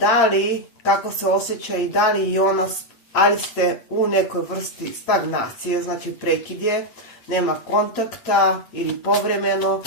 li, kako se osjeća i da li i ona, ali ste u nekoj vrsti stagnacije, znači prekid je, nema kontakta ili povremeno,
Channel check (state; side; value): late; right; 8.7 ms